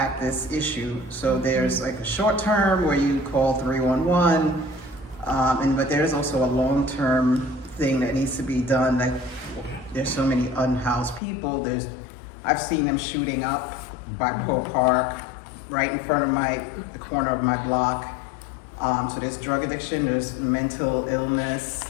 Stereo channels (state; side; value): drops out; right; at 11.2 s